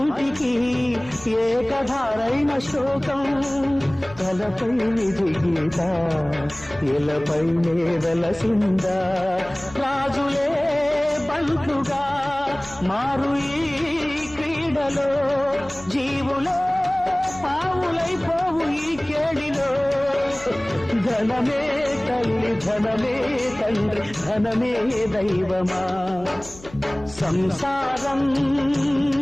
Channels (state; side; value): noise; left; hum, 19 dB below the sound